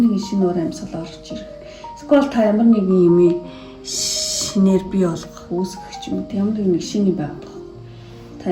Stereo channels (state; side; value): identical; both; correlation 1.00